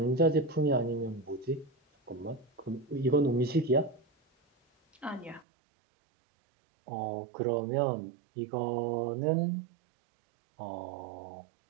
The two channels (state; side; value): drops out; left; at 5.5 s